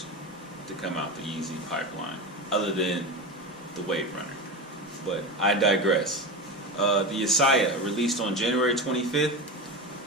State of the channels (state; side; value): normal; both; correlation 0.23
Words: to come out the Yeezy pipeline, other than the Wave Runner. But I digress. The Yeshaya, released on January 25th